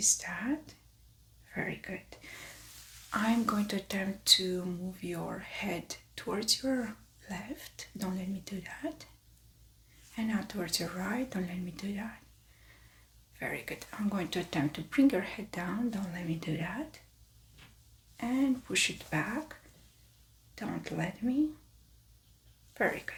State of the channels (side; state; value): both; identical; correlation 1.00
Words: that. Very good. I'm going to attempt to move your head towards your left. Don't let me do that. And now towards your right. Don't let me do that. Very good. I'm going to attempt to bring your head down. Don't let me do that. And push it back. Don't let me. Very